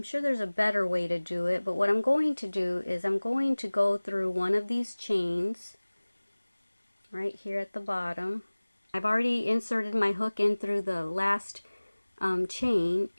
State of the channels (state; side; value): inverted; both; correlation -1.00